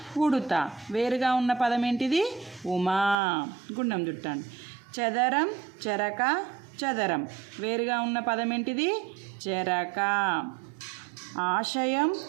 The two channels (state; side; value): drops out; left; at 3.2 s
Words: ఉడుత. వేరుగా ఉన్న పదం ఏంటిది? ఉమా. గుండం చుట్టండి. చదరం, చెరక, చదరం. వేరుగా ఉన్న పదం ఏంటిది? చెరక. ఆశయం,